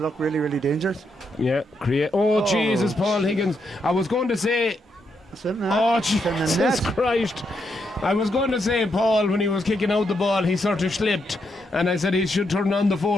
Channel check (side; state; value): both; normal; correlation 0.80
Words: really, really dangerous. Yeah, create. Oh, Jesus, Paul Higgins. I was going to say. That's it now. Oh, It's in the Jesus net. Christ. I was going to say, Paul, when he was kicking out the ball, he sort of slipped. And I said he should turn on the